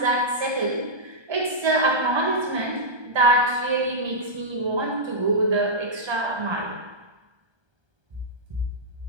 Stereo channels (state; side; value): late; left; 1.3 ms